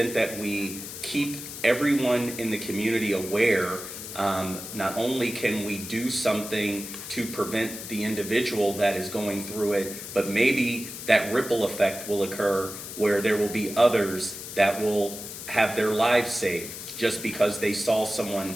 that we keep everyone in the community aware, not only can we do something to prevent the individual that is going through it, but maybe that ripple effect will occur where there will be others that will have their lives saved just because they saw someone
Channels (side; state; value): left; noise; hiss, 10 dB below the sound